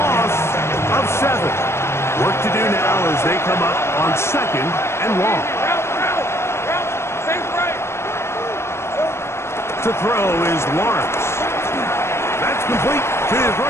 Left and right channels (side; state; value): right; late; 0.13 ms